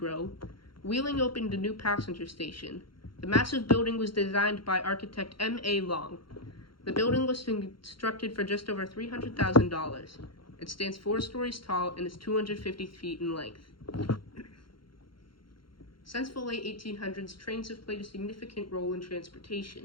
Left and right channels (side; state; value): right; late; 0.73 ms